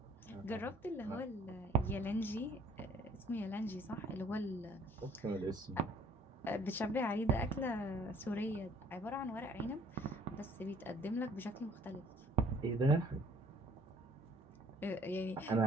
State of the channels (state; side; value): normal; both; correlation 0.58